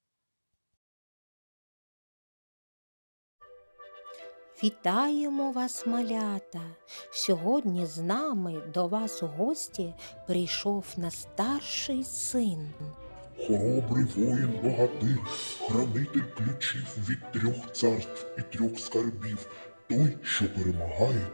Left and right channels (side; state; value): both; inverted; correlation -1.00